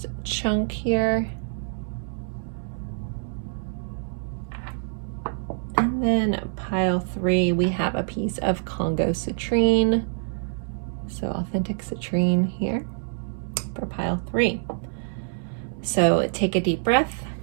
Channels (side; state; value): left; silent; 61 dB below the other